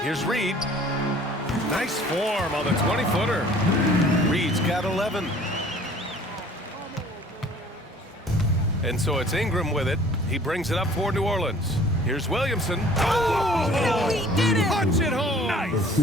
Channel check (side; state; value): both; normal; correlation 0.52